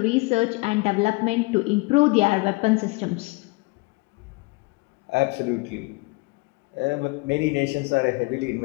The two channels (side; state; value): right; quieter; 26.6 dB